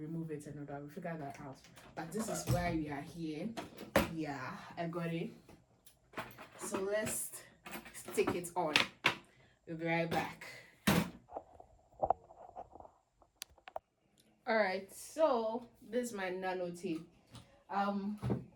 it, and I will figure that out. But this is why we are here. Yeah, I got it. So let's stick it on. We'll be right back. All right, so this is my nano tape.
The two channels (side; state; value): both; identical; correlation 1.00